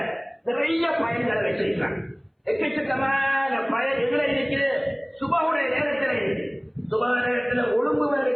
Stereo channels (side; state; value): both; identical; correlation 1.00